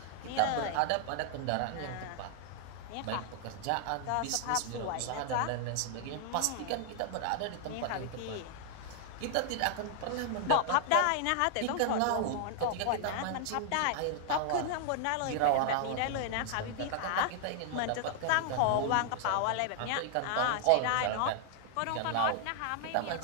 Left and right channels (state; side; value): different; both; correlation 0.00